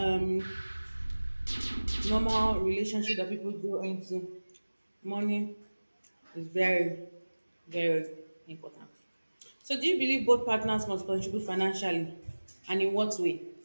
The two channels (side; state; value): both; inverted; correlation -1.00